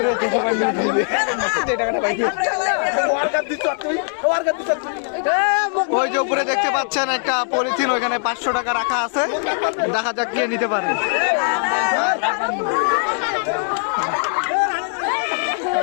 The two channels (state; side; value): silent; right; 66 dB below the other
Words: ওই যে উপরে দেখতে পাচ্ছেন একটা পলিথিন, ওইখানে 500 টাকা রাখা আছে, দেখা যাক কে নিতে পারে।